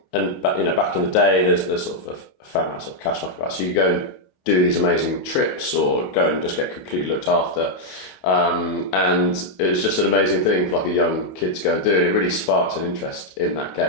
back in the day, there's sort of a fair amount of cash knock about. So you go and do these amazing trips, or go and just get completely looked after. And it was just an amazing thing for like a young kid to go and do, and it really sparked an interest in that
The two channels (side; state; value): right; late; 28 ms